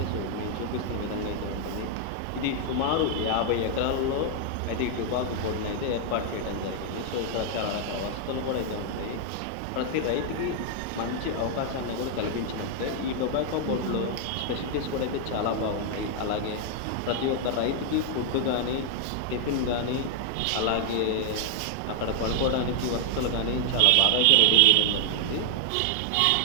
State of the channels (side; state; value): both; different; correlation 0.00